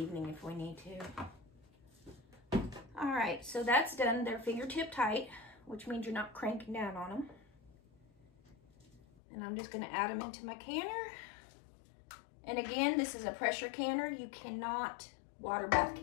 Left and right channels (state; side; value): drops out; right; at 9.0 s